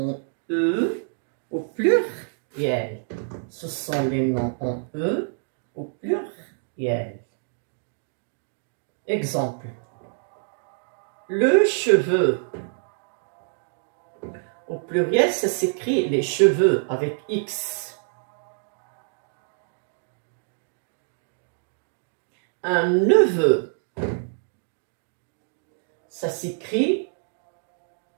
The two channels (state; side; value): silent; left; digital silence